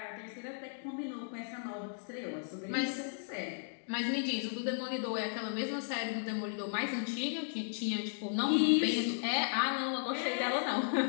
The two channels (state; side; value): silent; right; digital silence